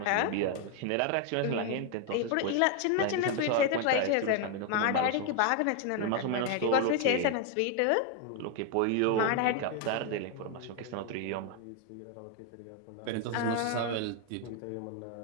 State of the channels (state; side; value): different; both; correlation 0.01